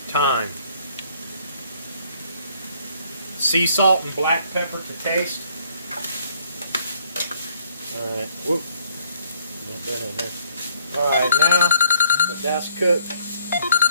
Thyme. Sea salt and black pepper to taste. Alright. Whoop. Alright, now that that's cooked,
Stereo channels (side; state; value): both; inverted; correlation -0.62